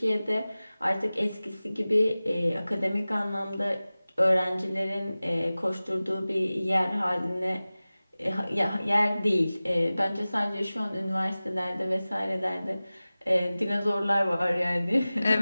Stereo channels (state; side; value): inverted; both; correlation -0.97